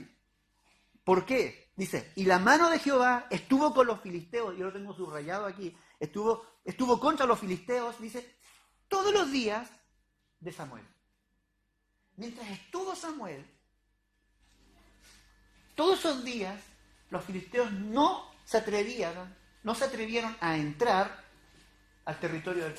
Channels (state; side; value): identical; both; correlation 1.00